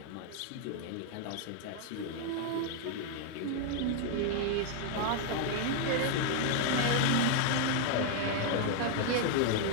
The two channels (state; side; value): different; both; correlation 0.00